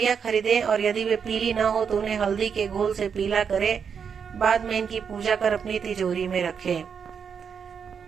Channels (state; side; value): quieter; left; 6.8 dB